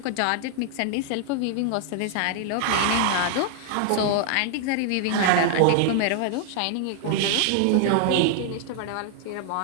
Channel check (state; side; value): different; both; correlation 0.00